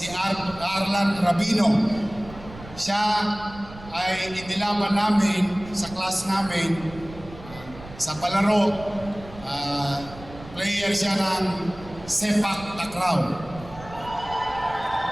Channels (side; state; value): right; noise; rumble, 17 dB below the sound